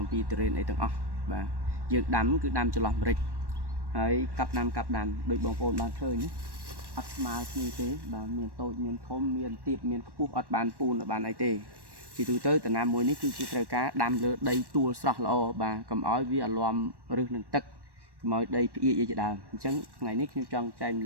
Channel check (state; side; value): late; left; 1.1 ms